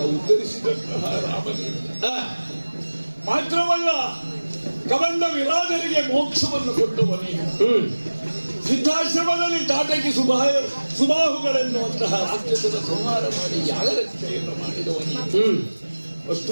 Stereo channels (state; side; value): inverted; both; correlation -1.00